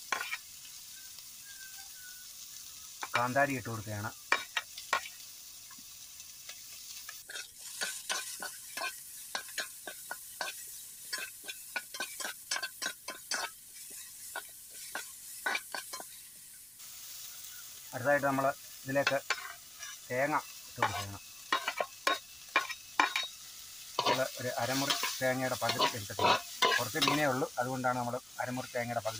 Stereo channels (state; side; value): noise; right; rumble, 28 dB below the sound